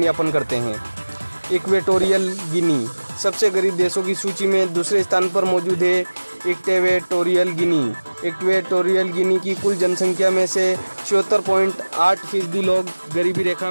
यापन करते हैं। इक्वेटोरियल गिनी सबसे गरीब देशों की सूची में दूसरे स्थान पर मौजूद है। इक्वेटोरियल गिनी की कुल जनसंख्या में से 74.8% लोग गरीबी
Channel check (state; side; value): inverted; both; correlation -1.00